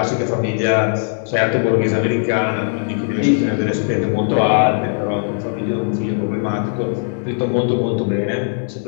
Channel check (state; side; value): silent; right; digital silence